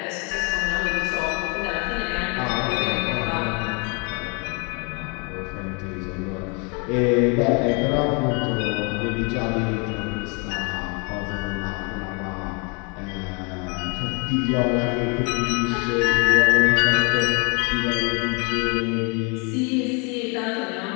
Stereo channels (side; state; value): right; quieter; 32.9 dB